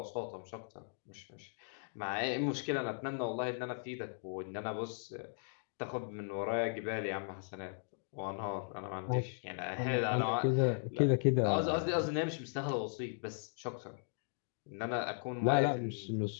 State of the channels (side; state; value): right; silent; digital silence